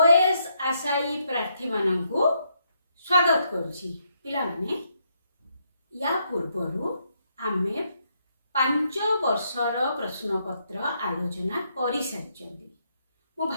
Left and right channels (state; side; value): inverted; both; correlation -0.76